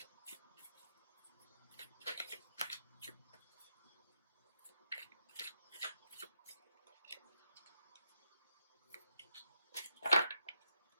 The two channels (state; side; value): inverted; both; correlation -0.81